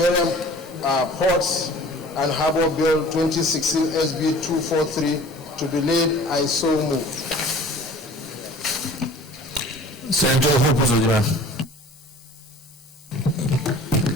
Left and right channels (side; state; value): both; normal; correlation 0.46